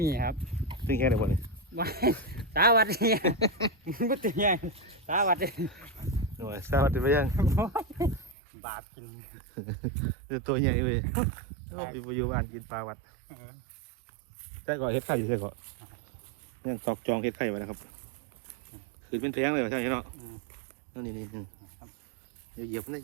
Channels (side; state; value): left; drops out; at 8.3 s